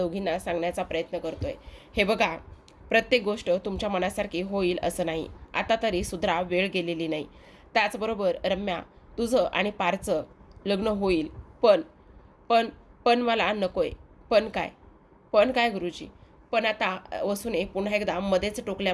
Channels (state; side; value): identical; both; correlation 1.00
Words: सांगण्याचा प्रयत्न करतोय. हे बघा, प्रत्येक गोष्ट तुमच्या मनासारखी होईल असं नाही. आता तरी सुधरा, वेळ गेलेली नाही. त्याचबरोबर रम्या, तुझं आणि पारचं लग्न होईल, पण पण पण मला नकोय. पण काय? पण काय गुरुजी? पण आता वसूने पुन्हा एकदा मध्येच